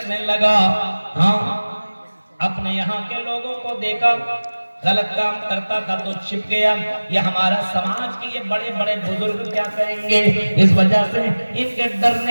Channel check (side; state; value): both; inverted; correlation -1.00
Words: लगा। हाँ, अपने यहाँ के लोगों को देखा गलत काम करता था तो छिप गया। ये हमारा समाज के ये बड़े बड़े बुजुर्ग क्या कहेंगे, इस वजह से